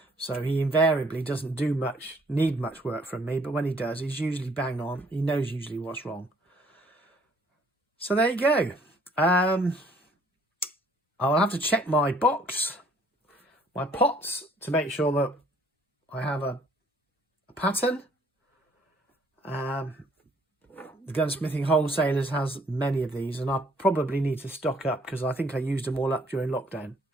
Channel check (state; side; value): normal; both; correlation 0.62